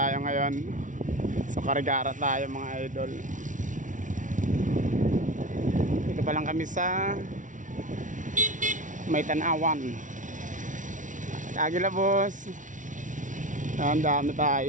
ngayon. So karigara tayo mga idol. Dito pa lang kami sa May Tanawan, Agila boss. Ang dami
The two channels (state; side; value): late; left; 0.37 ms